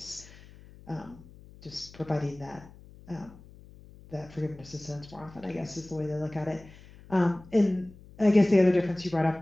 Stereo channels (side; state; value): left; noise; hum, 21 dB below the sound